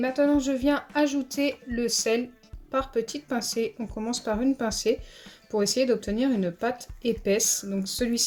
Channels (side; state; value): both; identical; correlation 1.00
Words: je viens ajouter le sel par petites pincées. On commence par une pincée pour essayer d'obtenir une pâte épaisse. Donc